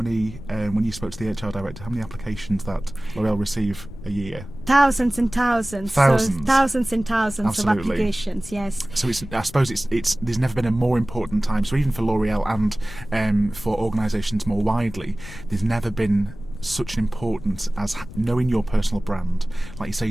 when you spoke to the HR director, how many applications that L'Oreal receive a year? Thousands and thousands. Thousands. So thousands and thousands Absolutely. of applications, yes. So I suppose there's never been a more important time. So even for L'Oreal and for organisations more widely, there's never been such an importance as knowing your personal brand, like you say,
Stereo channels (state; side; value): noise; left; rumble, 14 dB below the sound